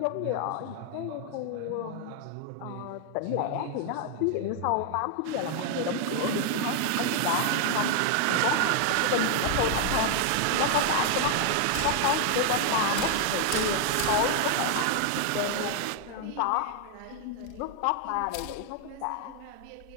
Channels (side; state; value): both; different; correlation 0.00